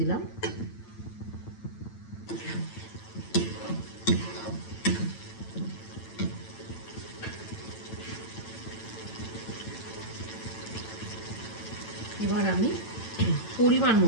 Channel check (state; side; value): late; right; 9.0 ms